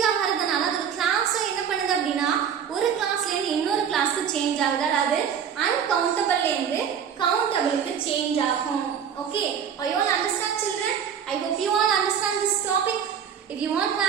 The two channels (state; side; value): quieter; left; 7.9 dB